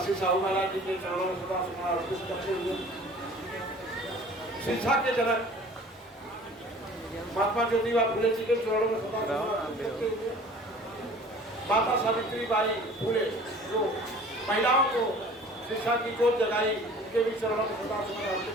साहू महाराज जी के चरणों में सदा समर्पित करते हुए शिक्षा के जनक महात्मा ज्योतिबा फुले जी के चरणों में सदा समर्पित करते हुए माता सावित्री बाई फुले जो महिलाओं को शिक्षा की जोत जगाई, उनके भी चरणों में सदा समर्पित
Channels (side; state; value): both; normal; correlation 0.47